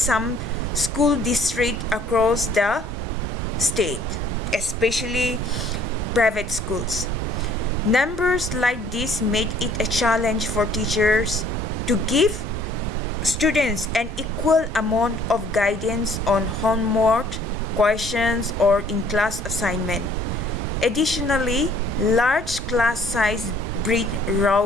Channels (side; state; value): both; normal; correlation 0.58